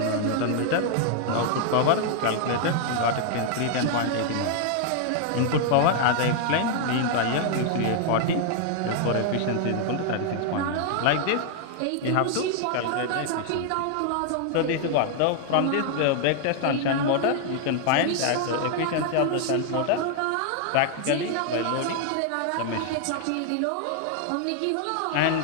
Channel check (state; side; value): different; both; correlation 0.00